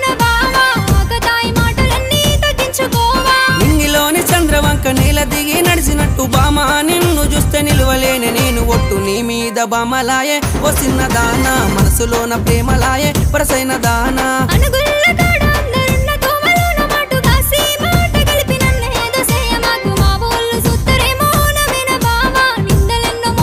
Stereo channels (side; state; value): both; identical; correlation 1.00